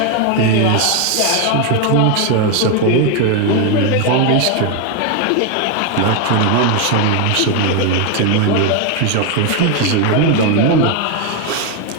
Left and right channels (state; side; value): different; both; correlation 0.01